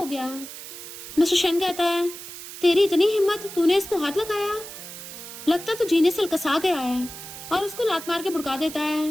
गया। मिस्टर शैन कहता है तेरी इतनी हिम्मत, तूने इसको हाथ लगाया? लगता तो जीने से लकसा गया है। और उसको लात मार के भुड़का देता है।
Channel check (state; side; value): noise; right; hiss, 12 dB below the sound